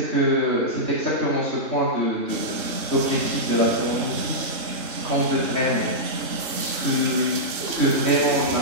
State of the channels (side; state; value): left; late; 3.6 ms